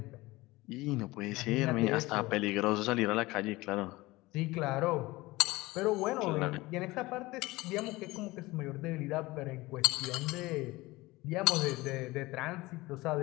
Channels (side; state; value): right; quieter; 20.5 dB